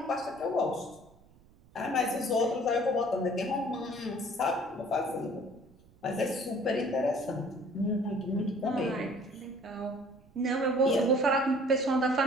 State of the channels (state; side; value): noise; right; rumble, 27 dB below the sound